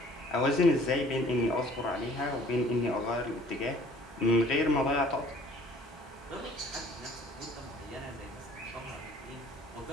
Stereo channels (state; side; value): normal; both; correlation 0.53